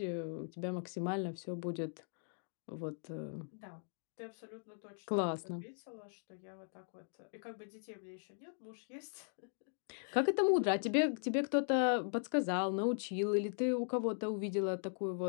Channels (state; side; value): silent; right; digital silence